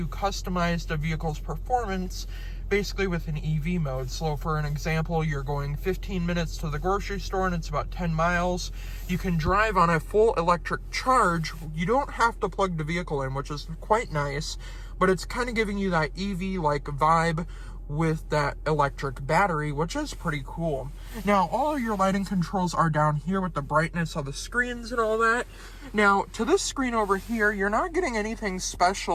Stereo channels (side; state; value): both; identical; correlation 1.00